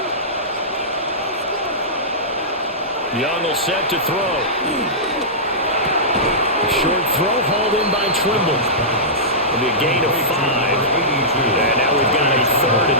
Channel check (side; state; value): both; normal; correlation -0.16